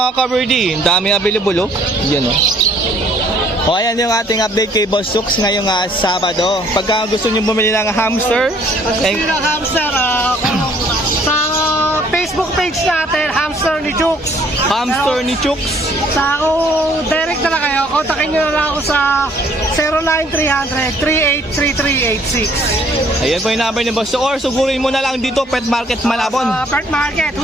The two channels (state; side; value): normal; both; correlation 0.61